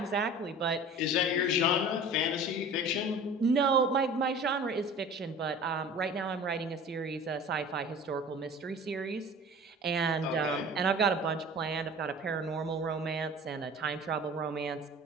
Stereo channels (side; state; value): both; normal; correlation 0.41